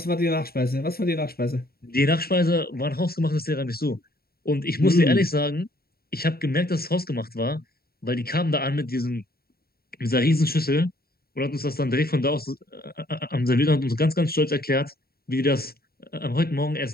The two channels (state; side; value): late; right; 0.45 ms